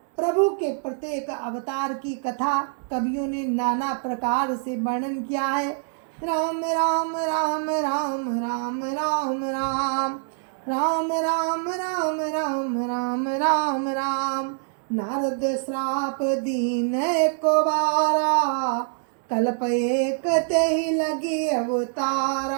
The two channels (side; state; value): left; silent; digital silence